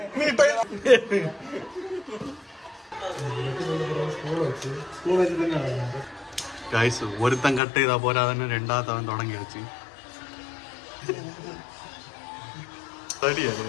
ഗൈസ്, ഒരുത്തൻ കട്ട് ചെയ്താ പോരാ തന്നെ രണ്ടാമത്തവൻ തുടങ്ങി വെച്ച്.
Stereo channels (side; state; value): right; drops out; at 7.6 s